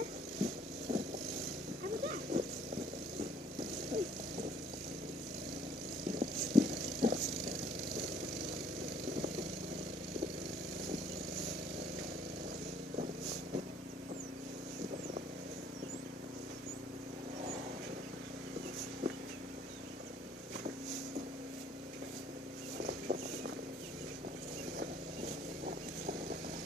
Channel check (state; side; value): normal; both; correlation 0.60